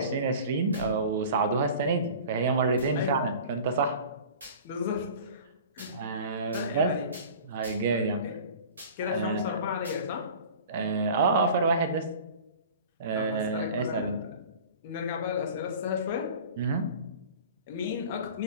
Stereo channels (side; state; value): both; inverted; correlation -0.41